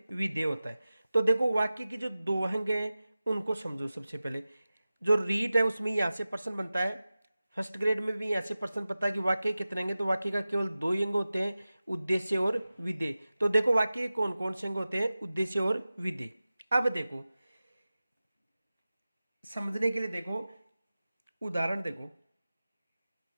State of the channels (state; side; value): inverted; both; correlation -0.96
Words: विधेय होता है। तो देखो वाक्य की जो 2 अंग हैं उनको समझो। सबसे पहले जो रीट है उसमें यहां से प्रश्न बनता है, फर्स्ट ग्रेड में भी यहां से प्रश्न पता है कि वाक्य कितने अंग हैं। तो वाक्य का केवल 2 ही अंग होते हैं, उद्देश्य और विधेय। तो देखो वाक्य के कौन कौन से अंग होते हैं? उद्देश्य और विधेय। अब देखो समझने के लिए, देखो उदाहरण देखो,